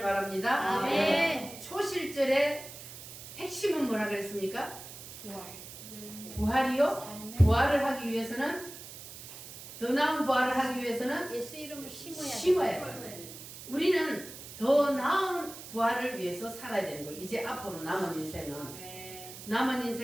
바랍니다. 아멘. 초실절의 핵심은 뭐라 그랬습니까? 부활. 부활이요? 삶의 부활을 하기 위해서는 더 나은 부활을 하기 위해서는 예수 이름을 심어야 심어야 돼요. 우리는 더 나은 부활을 위해서 살아야 되는 거예요. 이제 앞으로 남은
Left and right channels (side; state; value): right; noise; hiss, 13 dB below the sound